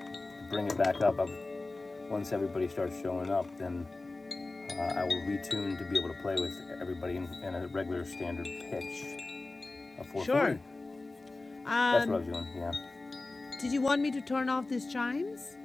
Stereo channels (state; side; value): quieter; right; 3.2 dB